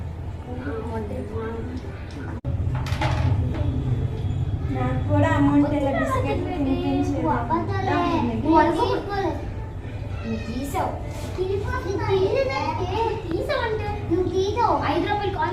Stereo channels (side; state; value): both; identical; correlation 1.00